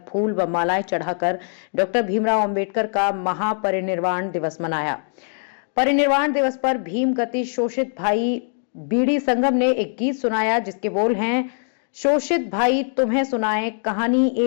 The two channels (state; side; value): silent; right; 62 dB below the other